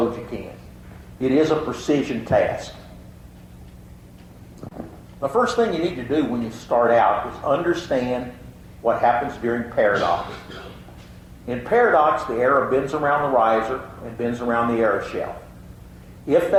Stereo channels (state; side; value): identical; both; correlation 1.00